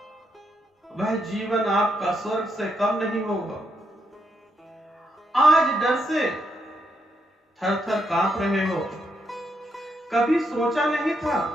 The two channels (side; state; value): both; normal; correlation 0.78